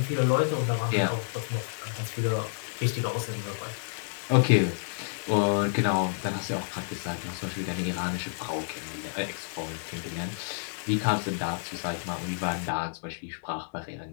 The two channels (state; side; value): silent; right; 58 dB below the other